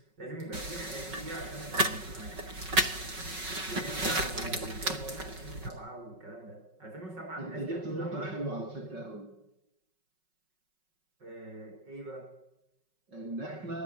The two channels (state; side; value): late; left; 5.4 ms